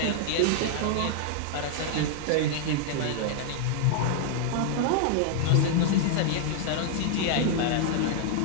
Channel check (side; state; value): both; different; correlation 0.00